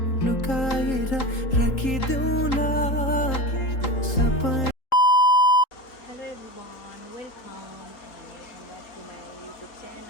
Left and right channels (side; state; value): right; late; 3.8 ms